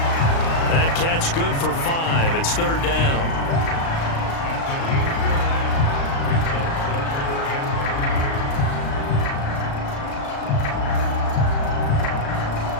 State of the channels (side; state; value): right; late; 36 ms